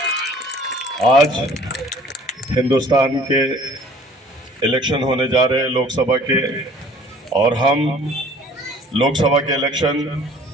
आज हिंदुस्तान के इलेक्शन होने जा रहे हैं लोकसभा के, और हम लोकसभा के इलेक्शन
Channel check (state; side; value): normal; both; correlation 0.52